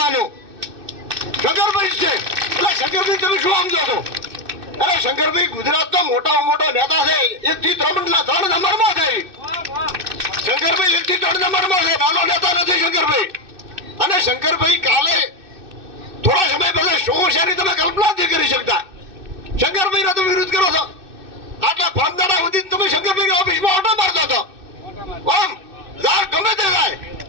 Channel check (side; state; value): left; late; 2.6 ms